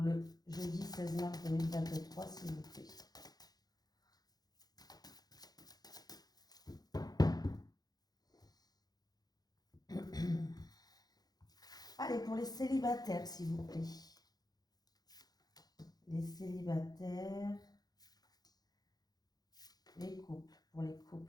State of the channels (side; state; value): right; late; 0.19 ms